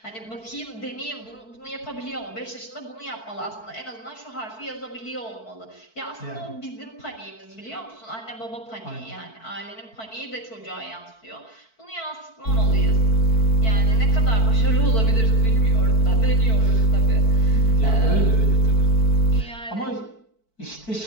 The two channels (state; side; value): late; right; 4.5 ms